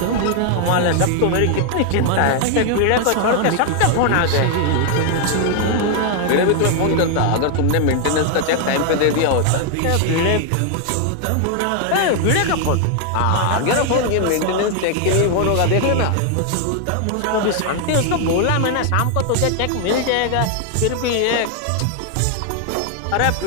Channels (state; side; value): different; both; correlation 0.00